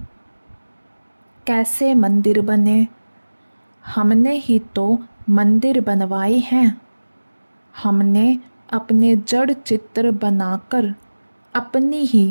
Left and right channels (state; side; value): inverted; both; correlation -1.00